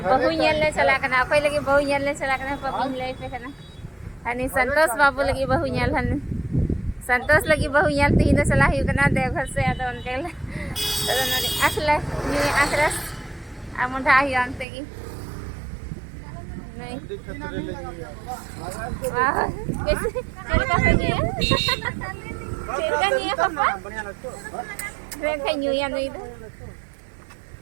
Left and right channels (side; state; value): left; drops out; at 14.7 s